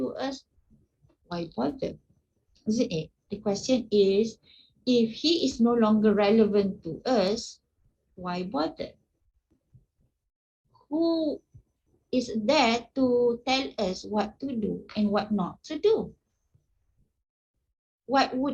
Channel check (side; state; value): both; identical; correlation 1.00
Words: us, why bother? Isn't it? The question is, if he is no longer relevant to us, why bother? Who is there to tell us what to do and what not to do? What